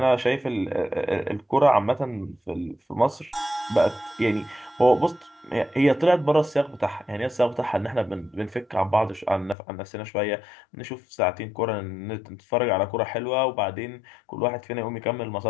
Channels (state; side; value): drops out; right; at 9.6 s